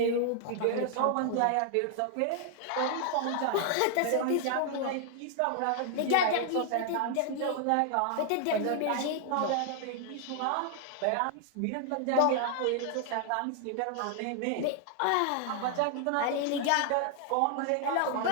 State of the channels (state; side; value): different; both; correlation 0.00